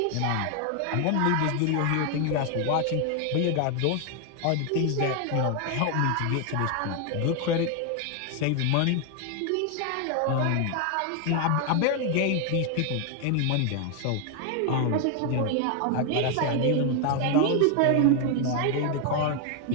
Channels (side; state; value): both; different; correlation 0.01